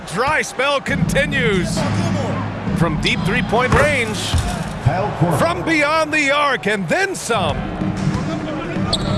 dry spell continues. From deep three-point range. From beyond the arc and then some.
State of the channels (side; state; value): both; identical; correlation 1.00